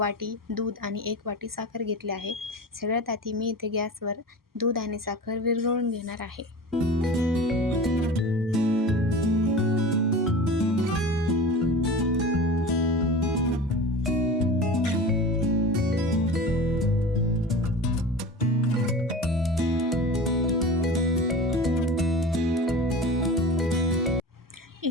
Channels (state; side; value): normal; both; correlation 0.33